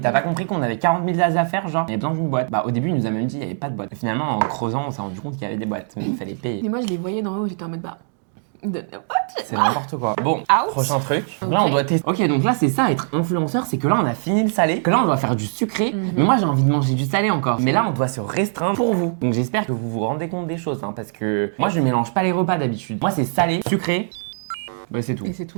pas compris qu'on avait 40 000 as à faire, genre il y avait besoin d'une boîte. Bah au début il nous a même dit il y avait pas de boîte. Et finalement en creusant on s'est rendu compte qu'il y avait des boîtes, mais il fallait payer. Mais moi, je les voyais d'en haut, j'étais en mode bah. C'est n'importe quoi. Bon, Out. prochain truc. Ok. Là, on doit tester. Ok, donc là, c'est ça, être influenceur, c'est que là, on a fini le salé, que là, on doit faire du sucré. Mais moi, j'ai envie de manger du salé encore. Mais là, on doit se restreindre pour vous. Donc, j'espère que vous vous rendez compte des choses, hein, parce que moi, je mélange pas les repas d'habitude. Moi, c'est salé, sucré. Bah, c'est tout. Et c'est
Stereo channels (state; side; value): silent; left; digital silence